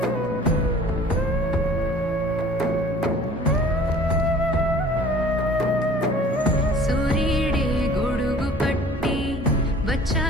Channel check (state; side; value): normal; both; correlation 0.49